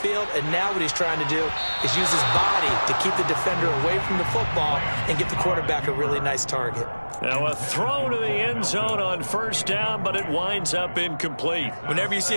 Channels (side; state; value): both; inverted; correlation -1.00